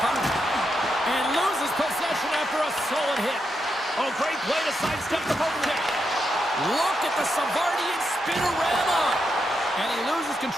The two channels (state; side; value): normal; both; correlation 0.84